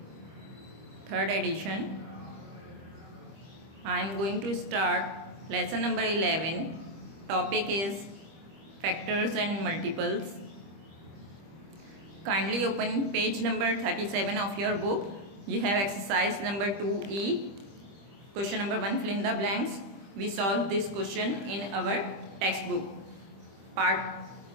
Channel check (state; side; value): late; left; 25 ms